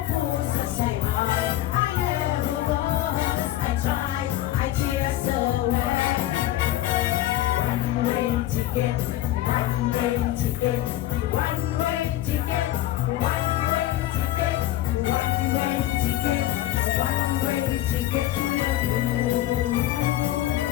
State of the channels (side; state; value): right; quieter; 14.4 dB